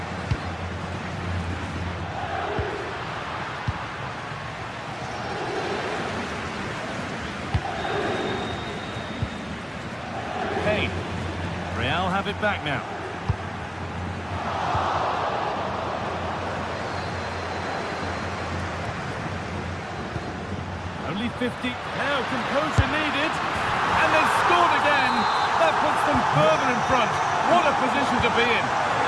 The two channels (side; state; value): both; identical; correlation 1.00